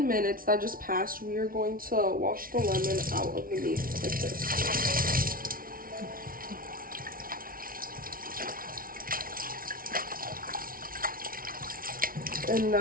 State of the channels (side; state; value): left; late; 0.42 ms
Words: minutes that just passed, we are going to wash the lemon out of the meat like this. And